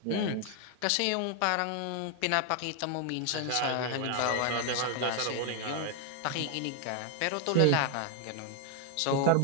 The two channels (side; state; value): both; different; correlation 0.00